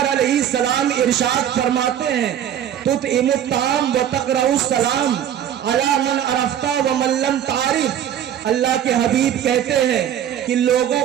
علیہ السلام ارشاد فرماتے ہیں، تطعم الطعام وتقرأ السلام علی من عرفت ومن لم تعرف. اللہ کے حبیب کہتے ہیں کہ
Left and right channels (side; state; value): left; quieter; 10.2 dB